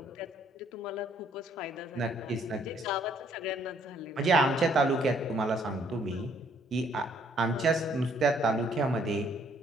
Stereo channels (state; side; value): normal; both; correlation 0.65